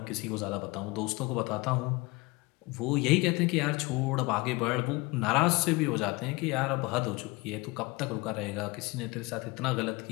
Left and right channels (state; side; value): quieter; right; 24.1 dB